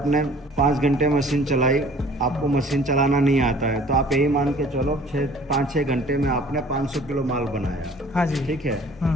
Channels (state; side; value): normal; both; correlation 0.51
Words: 5 घंटे मशीन चलाई, आपको मशीन चलाना नहीं आता है, तो आप यही मान के चलो 5-6 घंटे में आपने 500 किलो माल बनाया। हाँ जी। ठीक है,